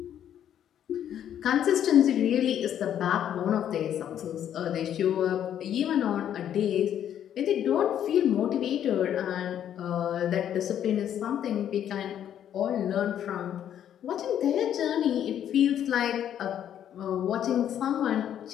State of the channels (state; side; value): quieter; right; 10.1 dB